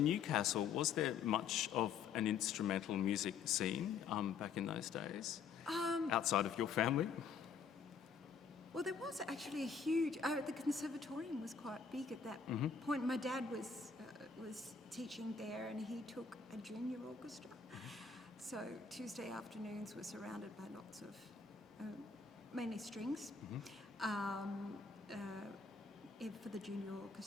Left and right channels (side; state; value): right; quieter; 5.9 dB